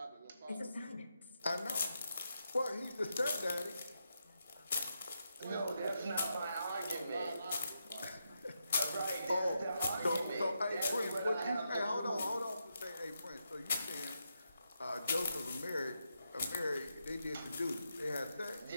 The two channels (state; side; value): inverted; both; correlation -0.84